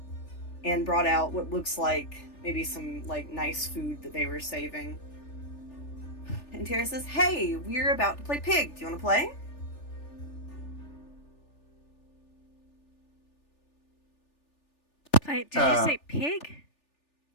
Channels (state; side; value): late; right; 3.4 ms